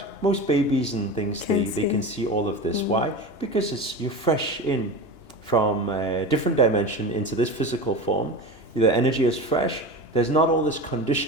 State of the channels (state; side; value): late; right; 2.9 ms